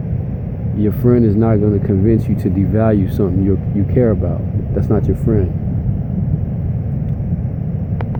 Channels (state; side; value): identical; both; correlation 1.00